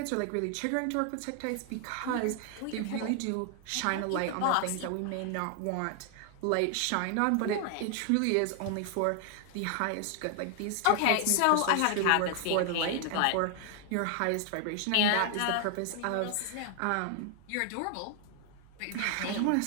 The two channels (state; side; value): different; both; correlation 0.00